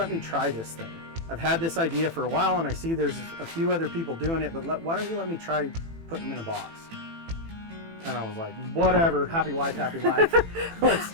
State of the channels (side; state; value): left; late; 18 ms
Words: me try this thing? I've had this idea for a while and I see there's a few other people doing it, but why don't you let me try putting them in a box? And I was like, whatever, happy wife, happy life.